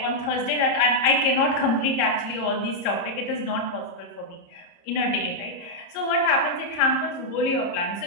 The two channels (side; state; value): right; late; 30 ms